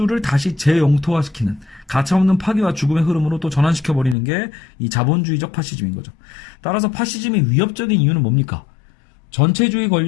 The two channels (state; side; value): drops out; right; at 4.2 s